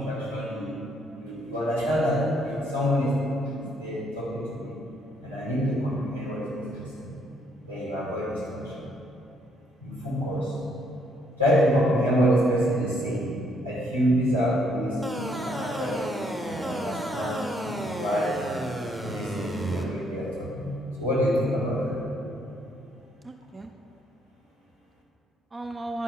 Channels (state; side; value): normal; both; correlation 0.70